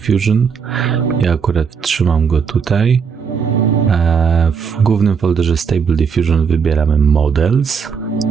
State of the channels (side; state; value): left; quieter; 6.1 dB